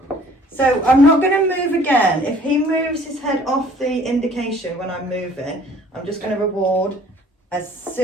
So I'm not going to move again. If he moves his head off the indication when I'm moving, I'm just going to reward as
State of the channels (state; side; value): normal; both; correlation 0.54